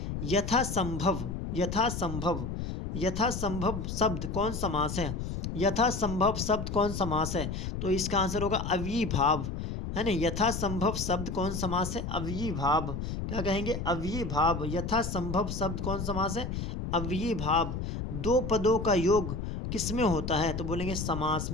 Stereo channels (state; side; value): noise; left; rumble, 4 dB below the sound